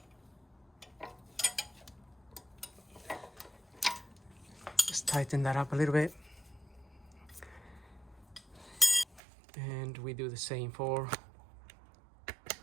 Just tighten that up a little bit. And we do the same for the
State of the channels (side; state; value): left; drops out; at 9.2 s